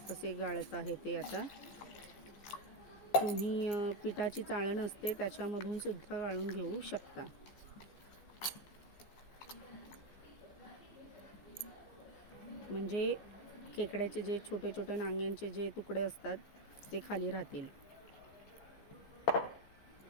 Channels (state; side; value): late; right; 14 ms